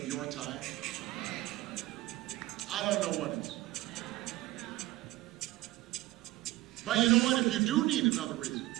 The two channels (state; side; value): quieter; left; 17.7 dB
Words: your time, I don't know what is. But you know what? If you do need another reason